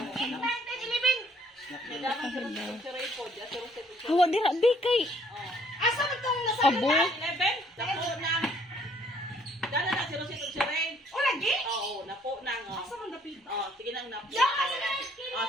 Awa di rabi kay. Asa man tong nasa Abo. 11? Napo na. Dala na si Rosito si Ray. O lagi? Oo, napo na. Asa man dapit? Sige nang napo. Ya, asa na? Sige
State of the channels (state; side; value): normal; both; correlation 0.62